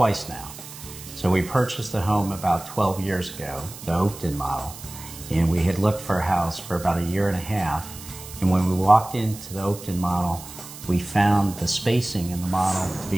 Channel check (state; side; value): noise; right; hiss, 15 dB below the sound